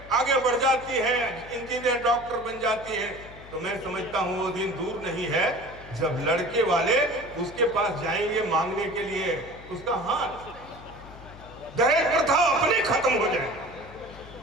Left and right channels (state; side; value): noise; left; hum, 18 dB below the sound